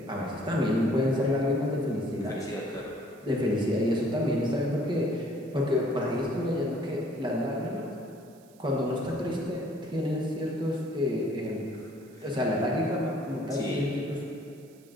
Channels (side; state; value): right; noise; hiss, 29 dB below the sound